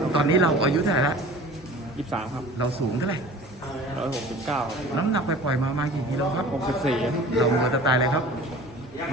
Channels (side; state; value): both; normal; correlation 0.42